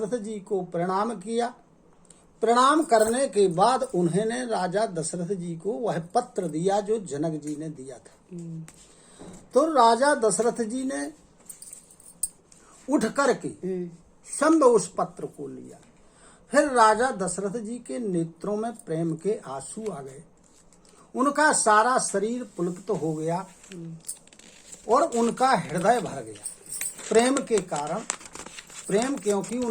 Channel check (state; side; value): identical; both; correlation 1.00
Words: जी को प्रणाम किया। प्रणाम करने के बाद उन्होंने राजा दशरथ जी को वह पत्र दिया जो जनक जी ने दिया था। तो राजा दशरथ जी ने उठ करके संभ उस पत्र को लिया। फिर राजा दशरथ जी के नेत्रों में प्रेम के आंसू आ गए। उनका सारा शरीर पुलकित हो गया और उनका हृदय भर गया प्रेम के कारण। प्रेम क्योंकि